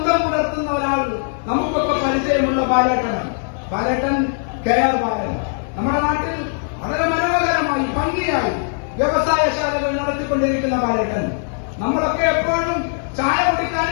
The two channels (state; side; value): silent; right; 58 dB below the other